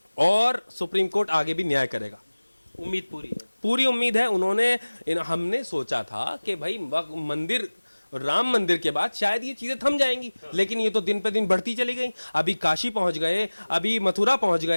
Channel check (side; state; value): both; inverted; correlation -1.00